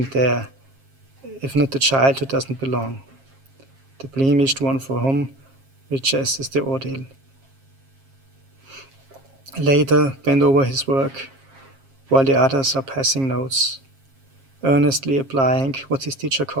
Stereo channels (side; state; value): left; late; 7.4 ms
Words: there, if not the child who doesn't belong, the blemished one for whom riches is the ordeal? Later, bend over his work, while the others are passing notes, earnestly applying what his teacher